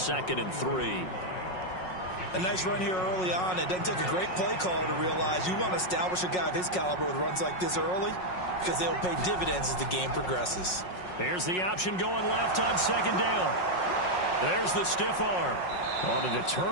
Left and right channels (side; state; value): right; late; 5.5 ms